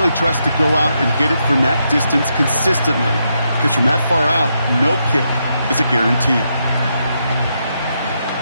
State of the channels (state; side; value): inverted; both; correlation -0.82